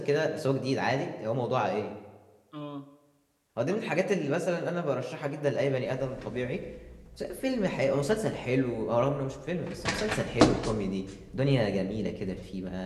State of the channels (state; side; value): identical; both; correlation 1.00